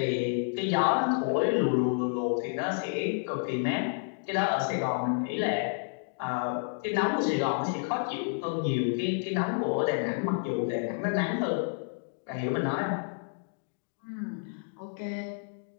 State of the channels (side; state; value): right; silent; digital silence